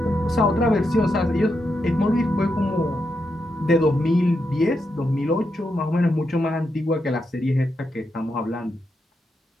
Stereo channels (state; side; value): normal; both; correlation 0.84